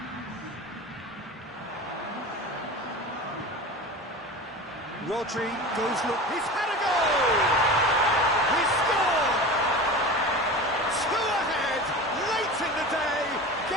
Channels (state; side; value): normal; both; correlation 0.32